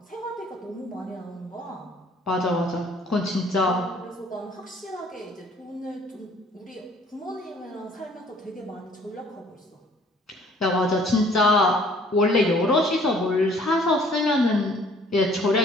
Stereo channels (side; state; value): both; normal; correlation 0.57